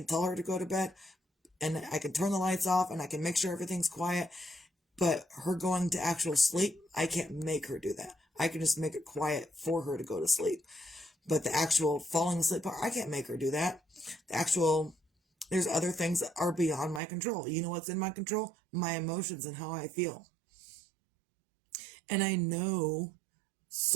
tell her to go to bed, and I can turn the lights off, and I can make sure everything's quiet, but her going to actual sleep, I can't make her do that. I can just make it quiet for her to go to sleep. But the actual falling asleep part, I can't make her do that. There's other things that are beyond my control. You know what's in my control? My emotions and how I feel. And I know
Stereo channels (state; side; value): drops out; left; at 17.0 s